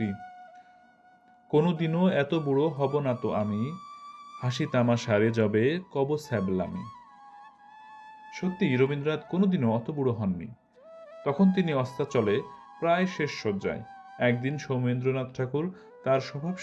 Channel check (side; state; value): both; identical; correlation 1.00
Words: কোনোদিনও এত বুড়ো হব না তো আমি, হাসি তামাশারে যবে কব স্যাবলামি। সত্যি রবীন্দ্রনাথ কোনোদিনও অত বুড়ো হননি। তখন তিনি অস্তাচলে, প্রায় শেষ শয্যায়। একদিন সৌমেন্দ্রনাথ ঠাকুর তার